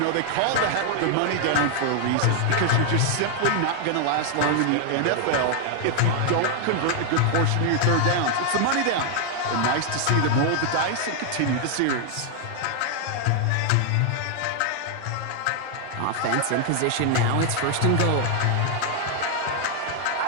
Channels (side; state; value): both; different; correlation 0.00